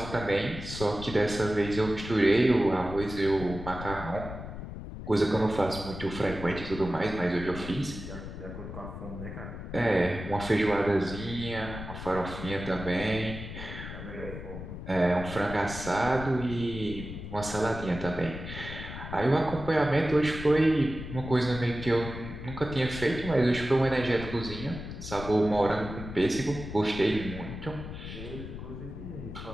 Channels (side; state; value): left; noise; rumble, 9 dB below the sound